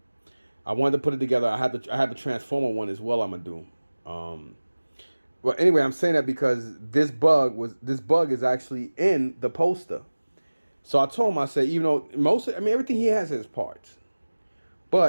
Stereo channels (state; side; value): inverted; both; correlation -1.00